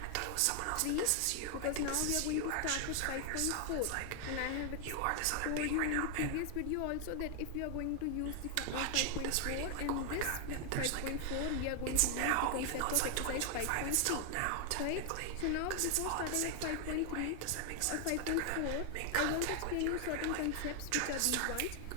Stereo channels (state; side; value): different; both; correlation 0.00